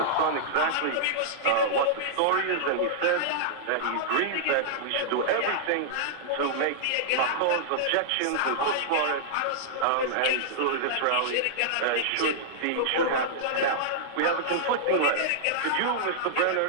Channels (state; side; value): different; both; correlation -0.02